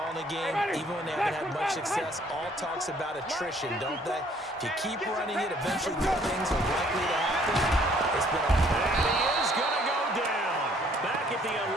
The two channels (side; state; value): both; normal; correlation 0.61